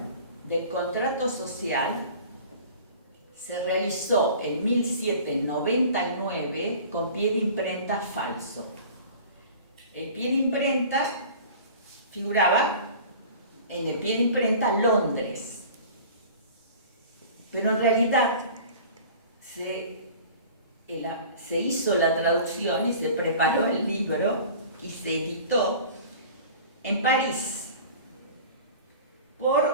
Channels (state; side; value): inverted; both; correlation -0.42